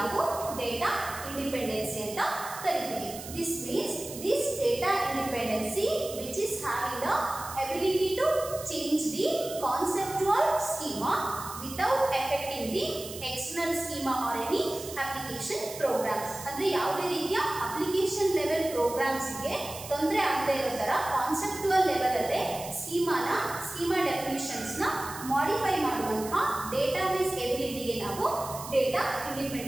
data independency ಅಂತ ಕರೀತೀವಿ. This means this data independency which is having the ability to change the conceptual schema without affecting the external schema or any application programs. ಅಂದ್ರೆ ಯಾವುದೇ ರೀತಿಯ application level programs ಗೆ ತೊಂದರೆ ಆಗದೇ ಇರೋ ತರ conceptual level ಅಲ್ಲೇ schema definitions ನ modify ಮಾಡುವಂತ database ability ಗೆ ನಾವು data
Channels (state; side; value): noise; right; hiss, 12 dB below the sound